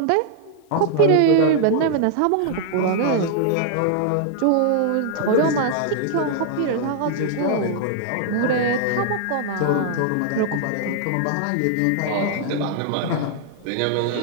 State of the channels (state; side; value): different; both; correlation -0.01